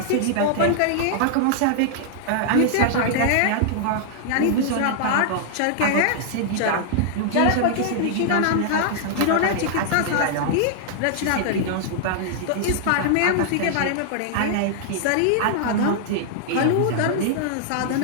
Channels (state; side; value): different; both; correlation -0.01